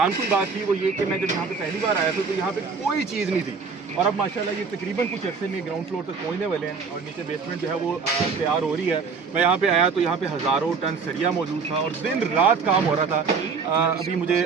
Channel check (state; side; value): quieter; left; 5.2 dB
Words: बात थी वो ये कि मैं जब यहाँ पे पहली बार आया था तो यहाँ पे कोई चीज़ नहीं थी और अब माशाल्लाह ये तकरीबन कुछ अर्से में ग्राउंड फ्लोर तक पहुँचने वाले हैं और नीचे बेसमेंट जो है वो तैयार हो रही है। मैं यहाँ पे आया तो यहाँ पे हज़ारों टन सरिया मौजूद था और दिन रात काम हो रहा था। अभी मुझे